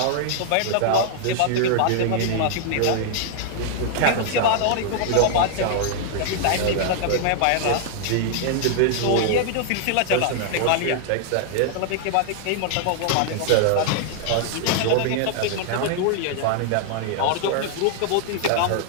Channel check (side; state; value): both; different; correlation -0.01